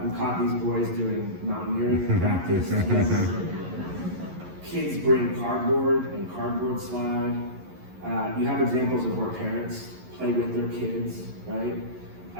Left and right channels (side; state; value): left; late; 11 ms